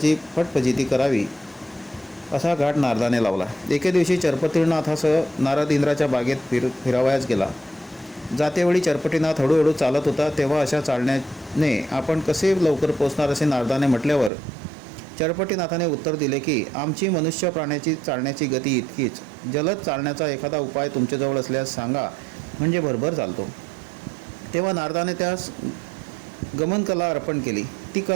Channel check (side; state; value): left; drops out; at 14.3 s